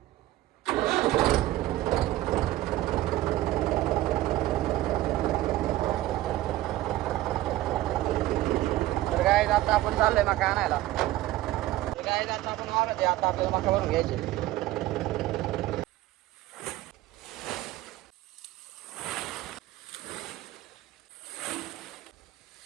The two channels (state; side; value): quieter; left; 15.9 dB